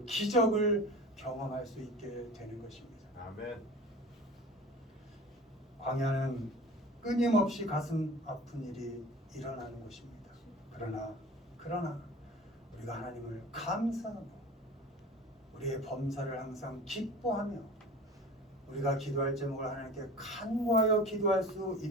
기적을 경험할 수 있게 되는 것입니다. 아멘. 광야는 끊임없이 가슴 아픈 일이 일어나는 곳입니다. 그러나 우리가 하나님을 감사하고 우리의 범사를 항상 기뻐하며 우리가 기도할 제목을 하나님께 간구하여 기도할 수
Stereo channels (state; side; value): normal; both; correlation 0.38